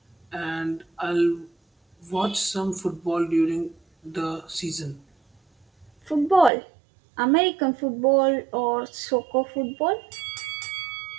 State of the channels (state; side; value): drops out; left; at 6.5 s